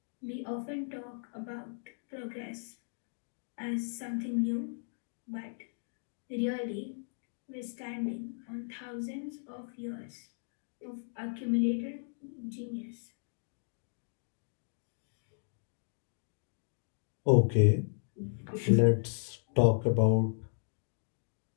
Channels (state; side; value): silent; right; digital silence